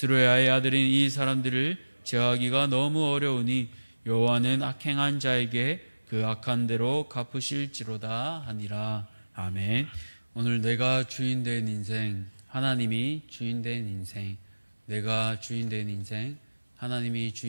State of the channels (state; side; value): inverted; both; correlation -1.00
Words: 아들인 이 사람들을 제어하기가 너무 어려우니 여호와는 악행한 자에게 그 악한 대로 갚으실지로다 하니라. 아멘. 오늘 내가 주인 된 인생, 하나님이 주인 된 인생, 내가 주인 된 인생, 하나님이